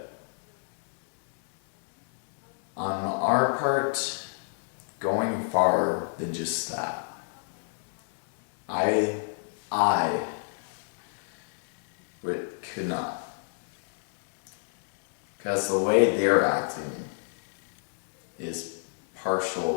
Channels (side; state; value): right; silent; digital silence